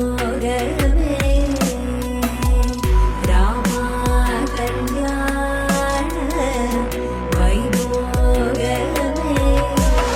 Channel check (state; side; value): identical; both; correlation 1.00